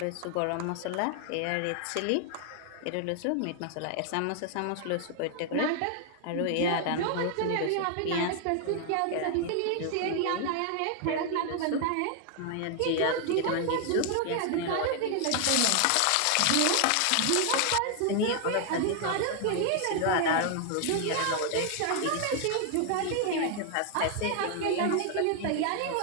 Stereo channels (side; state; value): both; different; correlation 0.00